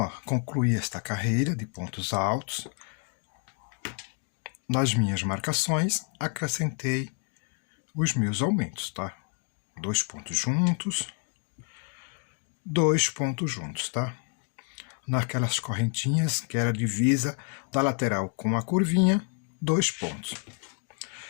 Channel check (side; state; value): right; quieter; 38.7 dB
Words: concluí esta carreira de pontos altos. Nas minhas marcações, acrescentei os meus aumentos, tá? 2 pontos juntos, 2 pontos juntos, tá? Naquelas correntinhas que era a divisa da lateral com a curvinha, 2 pontos.